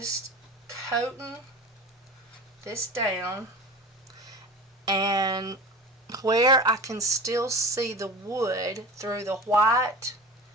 coating this down, and where I can still see the wood through the white,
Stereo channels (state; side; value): normal; both; correlation 0.34